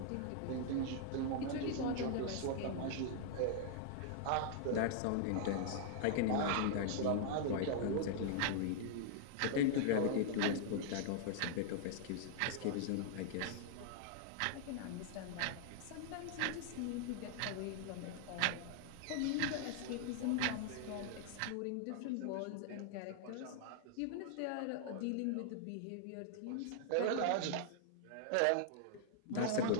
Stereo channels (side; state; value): both; different; correlation -0.01